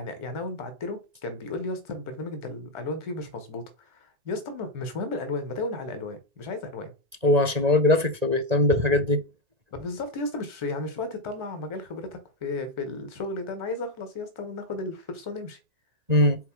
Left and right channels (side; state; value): left; late; 1.9 ms